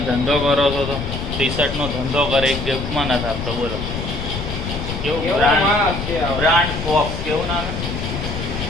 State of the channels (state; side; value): noise; left; rumble, 6 dB below the sound